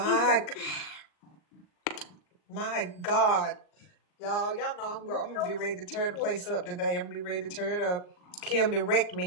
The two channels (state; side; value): late; right; 39 ms